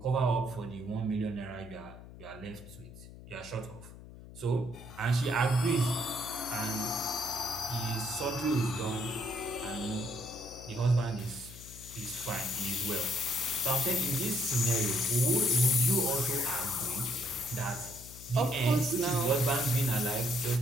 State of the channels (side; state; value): left; noise; hum, 16 dB below the sound